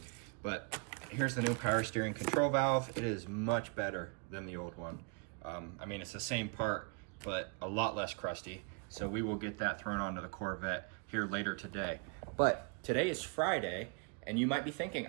But here's the new power steering control valve. It is much better than the old one. I mean, it's the same part, but a lot less crusty. So we will get that thrown onto the Corvette here later today. But today is Friday, and you might be thinking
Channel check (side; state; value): left; quieter; 36.5 dB